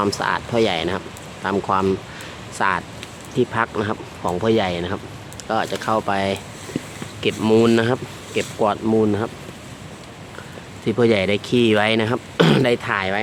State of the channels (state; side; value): identical; both; correlation 1.00